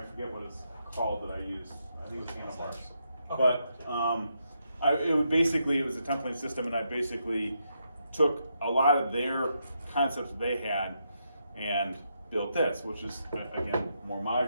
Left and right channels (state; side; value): inverted; both; correlation -0.81